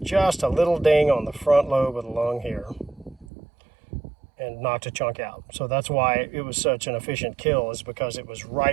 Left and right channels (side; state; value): left; drops out; at 3.2 s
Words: just a little ding on the front lobe of the lung here and knocked a chunk out. So that's why it was such an efficient kill, is because it was